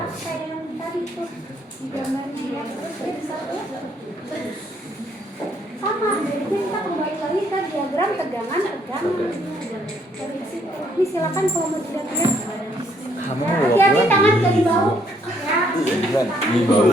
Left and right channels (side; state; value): both; normal; correlation 0.68